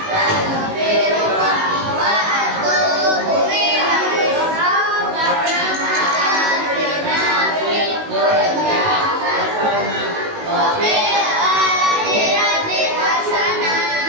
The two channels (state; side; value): late; left; 19 ms